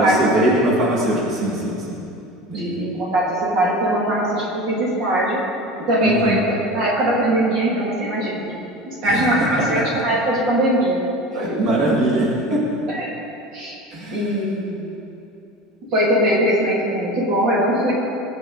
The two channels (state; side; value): normal; both; correlation 0.33